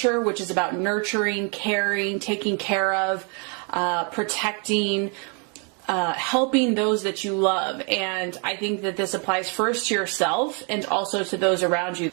which is about nurturing, caring, taking care of, protecting, helping those that you love. And I think that this applies first to yourself and also to those around you.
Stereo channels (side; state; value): left; quieter; 36.6 dB